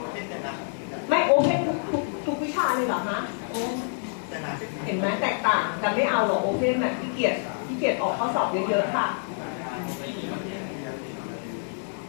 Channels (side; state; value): right; silent; digital silence